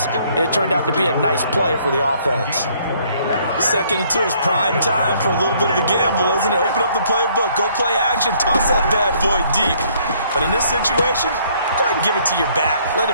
and it turned out to be a nice play for the offense. 2nd and 2 is prime time for a little bit of a gamble, isn't it? Open up the playbook, go play action, toss that bad boy deep. But in this situation, go ahead and give it to your back. Let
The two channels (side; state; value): both; inverted; correlation -0.64